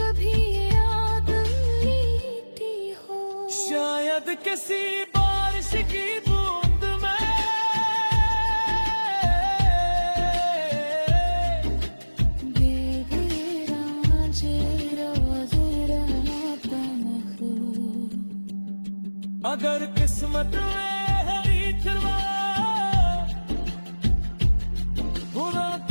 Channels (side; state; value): both; inverted; correlation -1.00